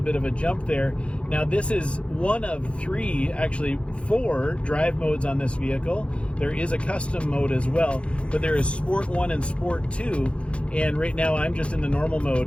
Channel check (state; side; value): late; right; 0.060 ms